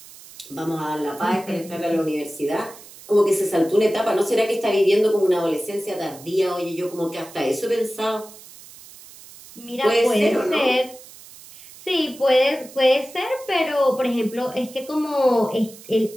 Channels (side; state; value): right; noise; hiss, 19 dB below the sound